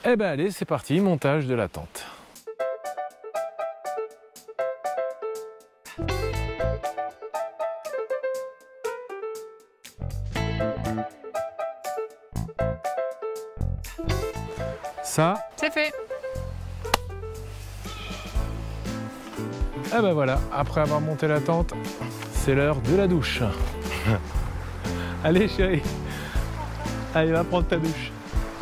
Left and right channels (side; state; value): both; identical; correlation 1.00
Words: Eh ben allez, c'est parti, montage de la tente. Ça, c'est fait. Eh ben voilà, après avoir monté la tente, c'est l'heure de la douche. Allez chérie, allez va prendre ta douche.